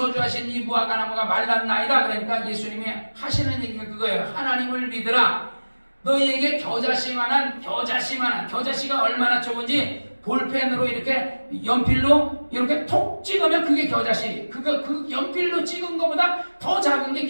이 무화과 나무가 말랐나이다. 그러니까 예수님이 하시는 얘기가 그거예요. 하나님을 믿으라. 너희에게 겨자씨가 얼마나 좋은지 볼펜으로 이렇게 연필로 이렇게 톡 찍으면 그게 겨자씨. 그 연필로 찍은 것보다 더 작은 게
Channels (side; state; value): both; inverted; correlation -1.00